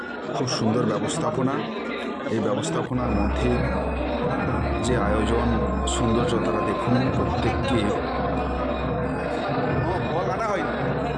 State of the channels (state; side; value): identical; both; correlation 1.00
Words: খুব সুন্দর ব্যবস্থাপনা। এই ব্যবস্থাপনার মধ্যে যে আয়োজন সৌন্দর্য তারা দেখুন।